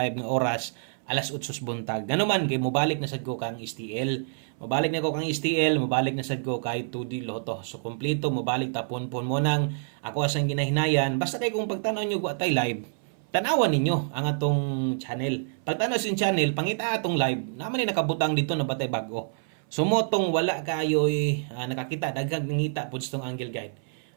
nga oras alas 8 buntag. Ngano man kay mobalik na sad ko kang STL. Mobalik na ko kang STL, mobalik na sad ko kay 2D Lotto. So kompleto mobalik tapon mo nang ako asang ginahinayan. Basta kay kung pagtanaw nyo ko atay live, tanawan ninyo ang atong channel. Pagtanaw sin channel, pangita atong live, naman ni nakabutang dito na batay bago. Sumotong wala kayo nakakita daghang nangita pud tong angle guide.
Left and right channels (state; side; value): silent; left; 59 dB below the other